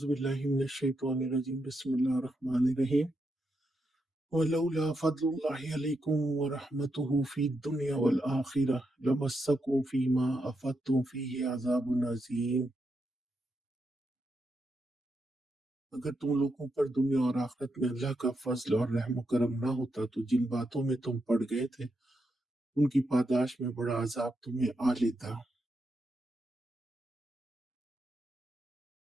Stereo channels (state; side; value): normal; both; correlation 0.83